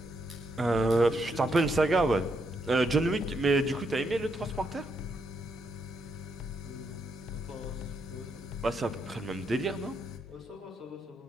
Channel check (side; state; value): both; normal; correlation 0.78